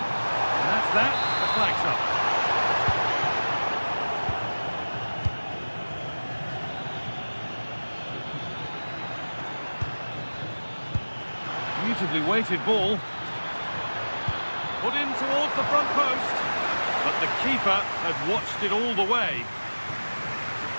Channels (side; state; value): both; inverted; correlation -1.00